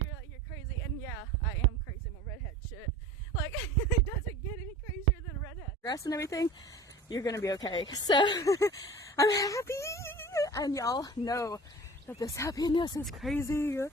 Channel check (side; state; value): both; normal; correlation 0.40